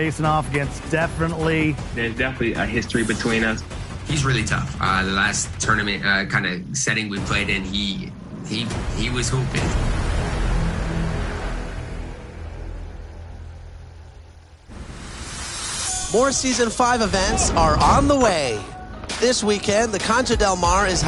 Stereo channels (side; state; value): both; identical; correlation 1.00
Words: off against There's definitely a history between us. He's really tough. The last tournament kind of setting we played in, he was hooping. More Season 5 events are on the way. This weekend, the Concha Del Mar is